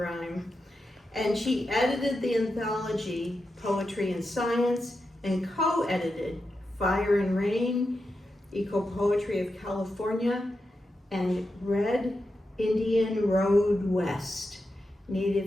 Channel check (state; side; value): normal; both; correlation 0.88